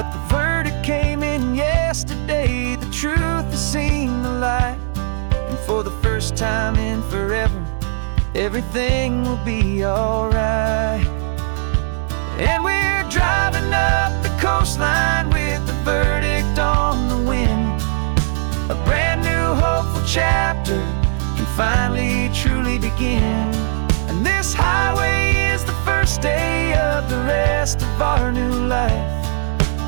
the verdict came in yesterday, the truth has seen the light. And for the first time in forever, everything will be alright. And we're driving up the coastline with the verdict on the wind. A brand new hopeful chapter can finally truly begin. And this highway is the first day of the rest of our new life,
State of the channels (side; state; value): left; silent; 67 dB below the other